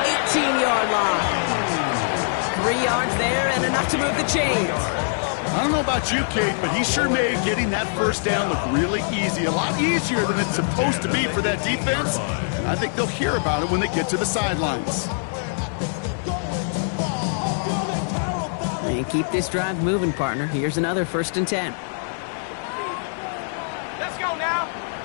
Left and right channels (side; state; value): right; silent; 63 dB below the other